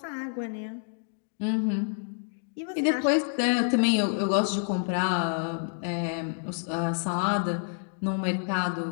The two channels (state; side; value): silent; right; digital silence